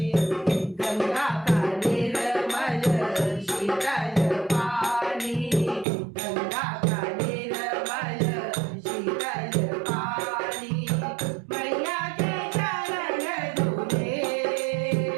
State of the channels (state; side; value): drops out; left; at 5.9 s